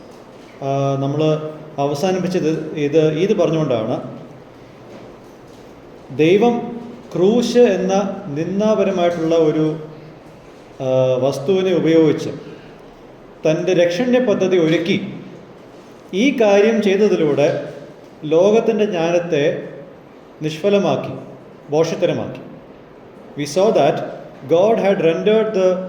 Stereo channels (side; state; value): both; identical; correlation 1.00